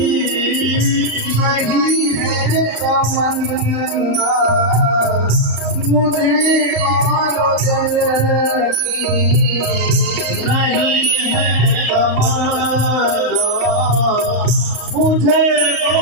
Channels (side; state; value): left; late; 35 ms